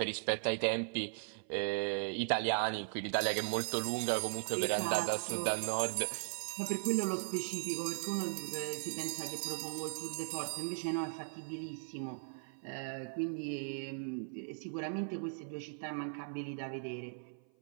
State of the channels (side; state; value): left; silent; 52 dB below the other